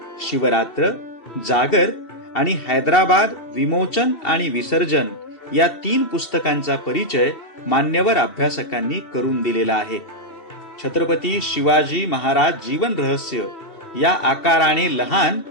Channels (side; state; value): right; late; 2.7 ms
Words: शिवरात्र, जागर आणि हैदराबाद विमोचन आणि विसर्जन या 3 पुस्तकांचा परिचय मान्यवर अभ्यासकांनी करून दिलेला आहे. छत्रपती शिवाजी महाराज जीवन रहस्य या आकाराने लहान